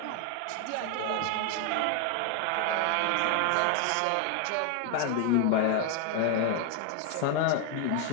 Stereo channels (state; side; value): different; both; correlation 0.00